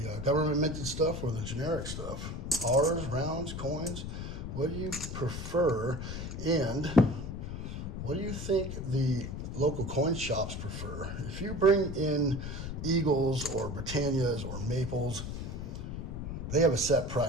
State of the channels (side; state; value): left; noise; rumble, 6 dB below the sound